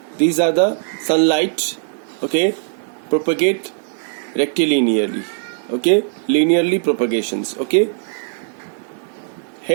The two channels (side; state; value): left; silent; digital silence